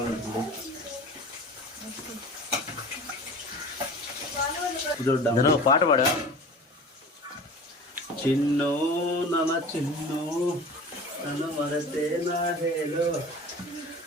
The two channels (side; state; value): both; normal; correlation 0.39